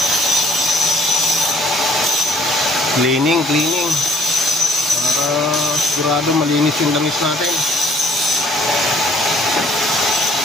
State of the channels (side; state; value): both; normal; correlation 0.59